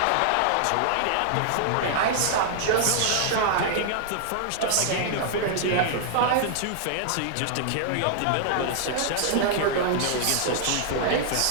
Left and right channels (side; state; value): both; different; correlation -0.01